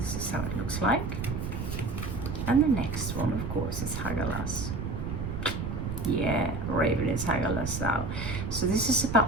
is how it looks like. And the next one, of course, is Hagalas. Yeah, Raven is Hagalas now. So this is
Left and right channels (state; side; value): noise; right; rumble, 4 dB below the sound